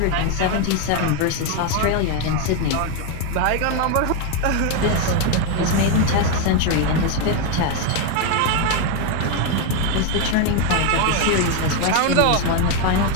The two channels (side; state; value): both; different; correlation 0.02